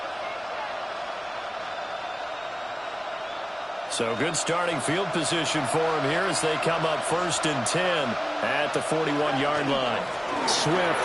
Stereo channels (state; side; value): identical; both; correlation 1.00